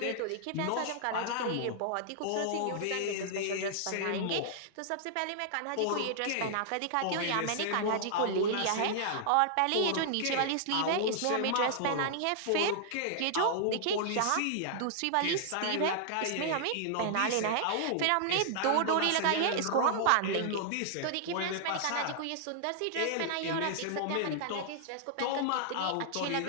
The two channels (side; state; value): both; different; correlation -0.01